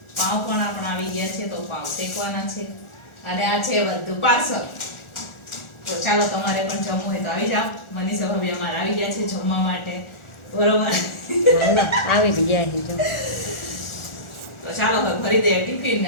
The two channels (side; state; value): right; late; 1.4 ms